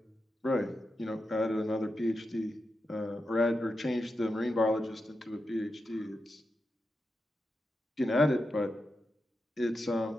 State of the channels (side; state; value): both; normal; correlation 0.88